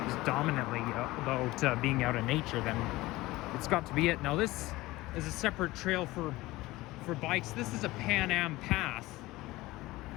dominantly about being out in nature, then it's got to be it. Now this is a separate trail for bikes. This is a Pan Am path.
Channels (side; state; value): right; quieter; 19.1 dB